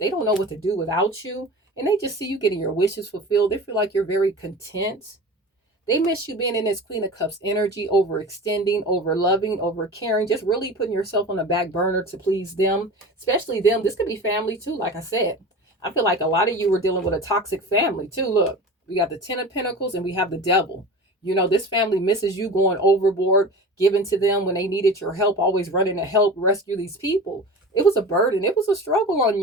don't know what to do without you. And they just see you getting your wishes fulfilled. They feel like you're very content. They miss you being in this Queen of Cups energy, overextending, over loving, over caring, just really putting yourself on the back burner to please them, especially them. This could be family too, like I said. I feel like a lot of you were dealing with a toxic family too. Look, we got the Ten of Pentacles and we have the Devil. You know, this family misses you going overboard, giving to them when they needed your help, always running to help rescue these people. It was a burden. It was a struggle on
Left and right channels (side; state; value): both; normal; correlation 0.34